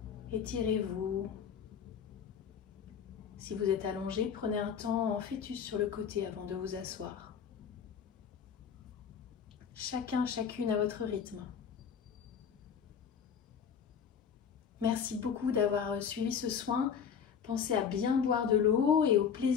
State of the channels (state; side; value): quieter; right; 7.3 dB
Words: Étirez-vous. Si vous êtes allongé, prenez un temps en fœtus sur le côté avant de vous asseoir. Chacun, chacune à votre rythme. Merci beaucoup d'avoir suivi ce soin. Pensez à bien boire de l'eau et au